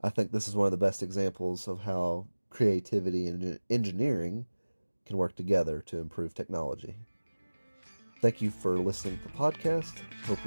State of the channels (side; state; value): both; inverted; correlation -1.00